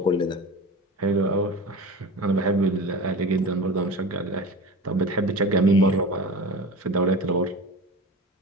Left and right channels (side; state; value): both; normal; correlation 0.32